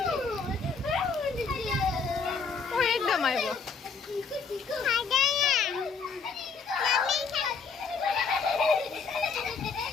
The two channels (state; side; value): quieter; right; 5.2 dB